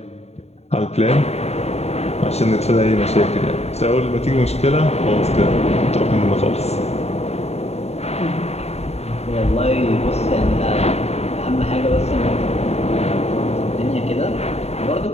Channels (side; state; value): right; late; 0.31 ms